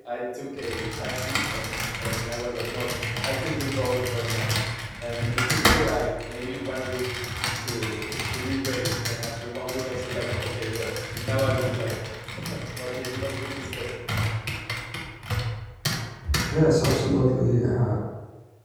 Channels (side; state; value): both; identical; correlation 1.00